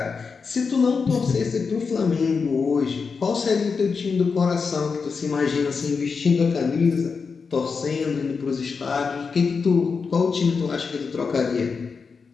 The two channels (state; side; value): quieter; right; 5.2 dB